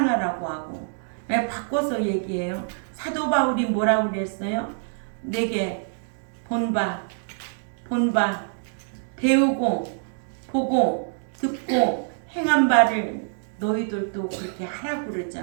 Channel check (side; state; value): left; silent; digital silence